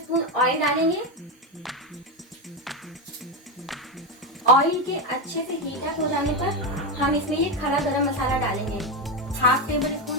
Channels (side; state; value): both; normal; correlation 0.11